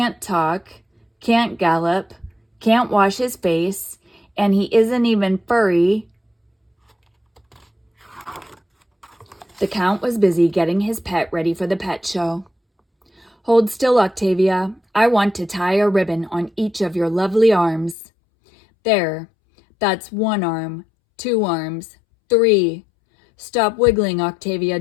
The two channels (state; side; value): drops out; right; at 17.9 s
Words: talk, can't gallop, can't wash his face, and he isn't even furry." The Count was busy getting his pet ready for the pet show. "Hold still, Octavia. I want to tie a ribbon on each of your lovely arms. There, that's 1 arm, 2 arms, 3. Stop wiggling, Octavia,